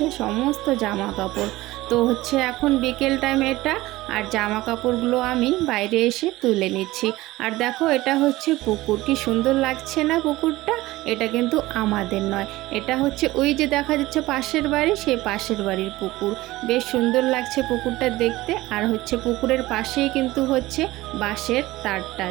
সমস্ত জামা কাপড়। তো হচ্ছে এখন বিকেল টাইম এটা, আর জামা কাপড়গুলো আমি বাইরে এসে তুলে নিচ্ছি। আর দেখো এটা হচ্ছে পুকুর, কি সুন্দর লাগছে না পুকুরটা? এটা কিন্তু আমাদের নয়, এটা হচ্ছে ওই যে দেখা যাচ্ছে পাশের বাড়ি, সেই পাশের বাড়ির পুকুর। বেশ সুন্দর লাগছে পুকুরটা দেখতে। আর হচ্ছে পুকুরের পাশেই কিন্তু হচ্ছে বাঁশের তারটা,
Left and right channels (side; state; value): left; quieter; 18.3 dB